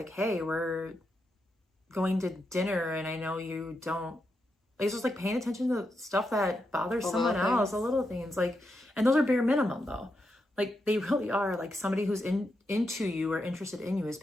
hey, we're going to dinner and I know you don't, like, it's just like paying attention to stuff that bothers someone else, the little things, like, and those are bare minimum though. Like they really are. Like somebody who's into you or interested in you is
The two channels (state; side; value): normal; both; correlation 0.85